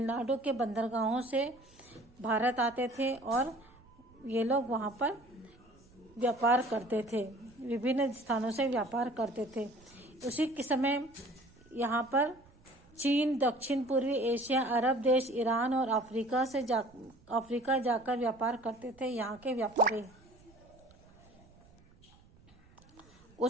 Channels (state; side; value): noise; right; rumble, 27 dB below the sound